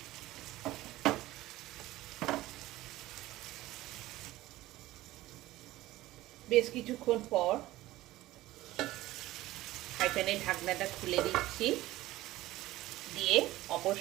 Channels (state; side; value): quieter; left; 16.8 dB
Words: বেশ কিছুক্ষণ পর ফ্রাই প্যানের ঢাকনাটা খুলে দিচ্ছি, দিয়ে অপর